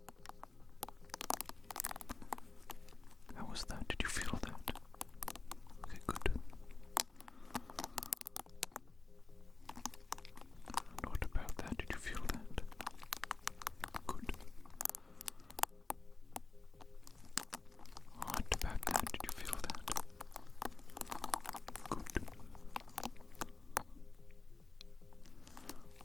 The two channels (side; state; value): right; quieter; 3.5 dB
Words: How was that? Did you feel that? Okay, good. And what about that? Did you feel that? Good. What about that? Did you feel that? Good.